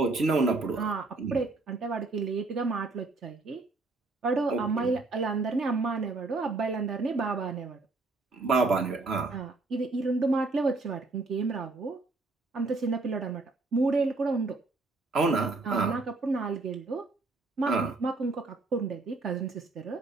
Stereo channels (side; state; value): left; quieter; 3.5 dB